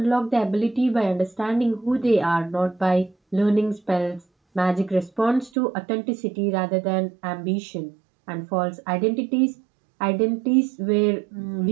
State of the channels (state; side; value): drops out; left; at 5.5 s